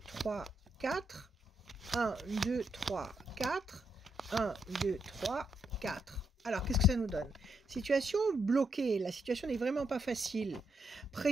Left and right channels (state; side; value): normal; both; correlation 0.79